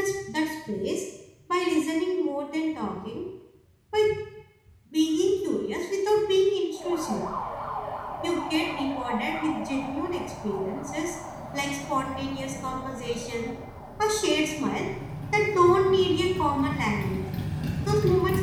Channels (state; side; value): identical; both; correlation 1.00